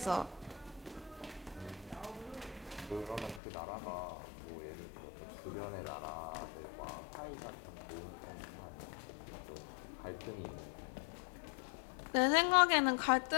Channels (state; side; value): drops out; right; at 3.4 s